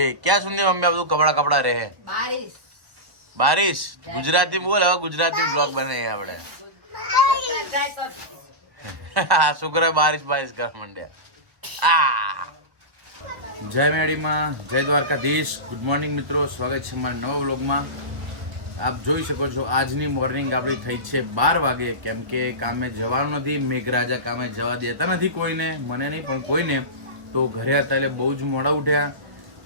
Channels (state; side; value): late; left; 1.3 ms